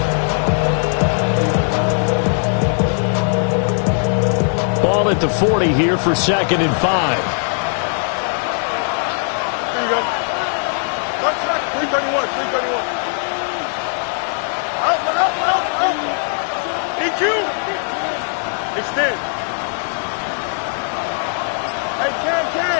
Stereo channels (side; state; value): right; silent; 67 dB below the other